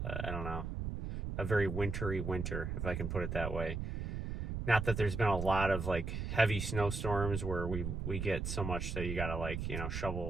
I don't know, a very wintry winter, if I can put it that way. Not that there's been a lot of like heavy snowstorms where we get so much that you gotta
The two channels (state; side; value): noise; right; rumble, 3 dB below the sound